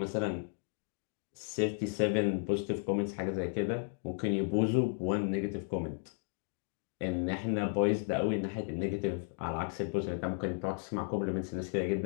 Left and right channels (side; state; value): right; silent; 55 dB below the other